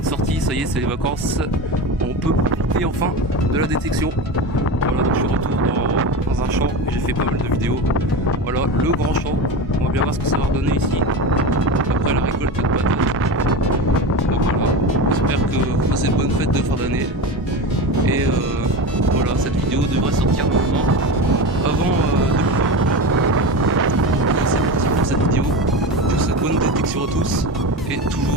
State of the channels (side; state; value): both; normal; correlation 0.24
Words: sortie, ça y est, c'est les vacances. On peut profiter enfin de la détection. Voilà, donc je suis de retour dans un champ. J'ai fait pas mal de vidéos. Voilà, le grand champ. On va bien voir ce que ça va redonner ici. Après la récolte de patates. Donc voilà, j'espère que vous passez de bonnes fêtes de fin d'année. Et voilà, cette vidéo devrait sortir maintenant. Avant c'est parti pour cette vidéo. Je vous souhaite bonne détection à tous et